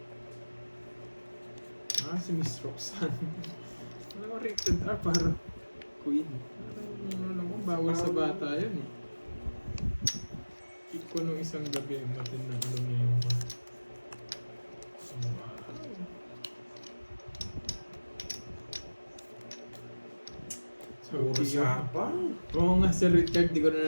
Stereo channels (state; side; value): inverted; both; correlation -1.00